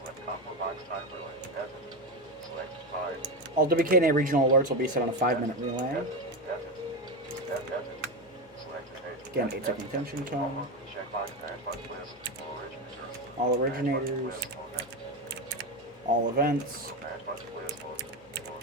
All WKNA regional alerts will be set on a 5-minute relay. Again, 8-second attention tone. All originators. All events.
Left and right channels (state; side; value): normal; both; correlation 0.15